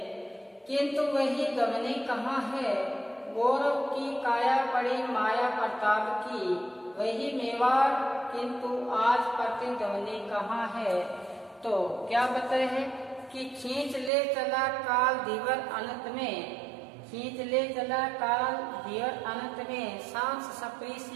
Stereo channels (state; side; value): drops out; left; at 14.1 s